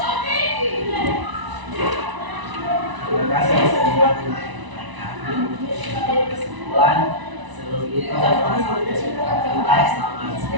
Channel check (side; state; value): left; late; 1.0 ms